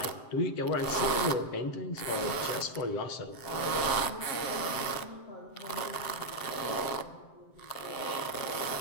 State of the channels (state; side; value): late; right; 7.6 ms